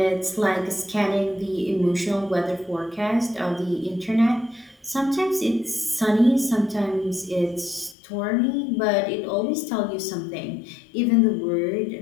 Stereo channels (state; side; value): drops out; right; at 8.0 s